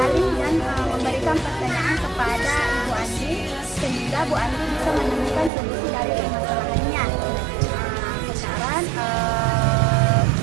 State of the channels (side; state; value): left; drops out; at 5.5 s